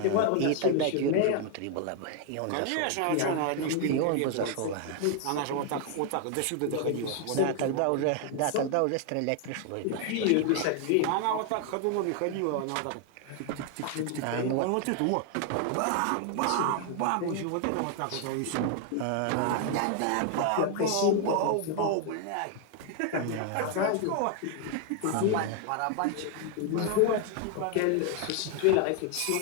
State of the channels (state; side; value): different; both; correlation 0.00